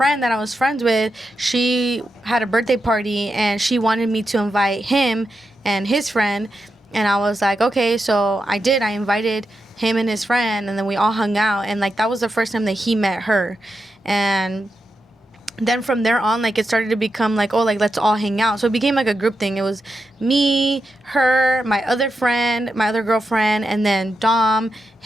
that I was friends with, she had a birthday party and she wanted me to invite him and his friend. And I was like, okay, so I did. I invited him and his friend, and then we all hung out. And like, that was the first time that he met her. And then from there on, like, it started to become like, oh, like, let's all hang out. So it became like a group thing. It was me, her, my other friend, my other girlfriend, and then Dom,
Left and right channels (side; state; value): both; normal; correlation 0.87